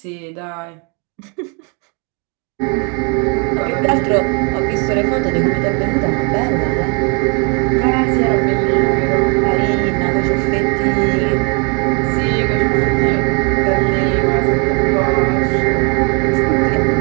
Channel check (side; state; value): left; quieter; 35.4 dB